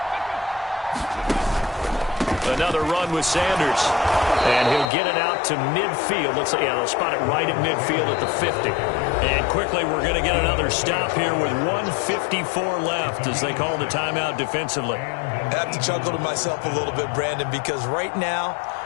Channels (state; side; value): drops out; right; at 4.9 s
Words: Another run with Sanders. And he'll get it out to midfield. Looks like, yeah, they'll spot it right at midfield at the 50. And quickly, we're going to get another stop here with 1:54 left as they call the timeout defensively. I have to chuckle to myself a little bit, Brandon, because right now,